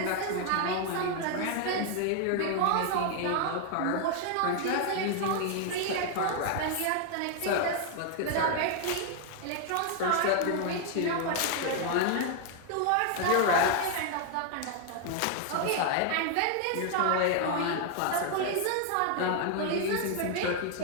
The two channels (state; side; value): different; both; correlation 0.00